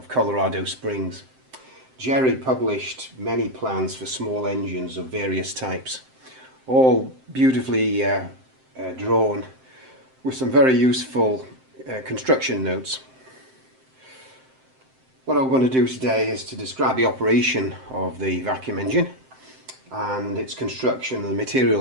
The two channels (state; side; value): late; left; 7.7 ms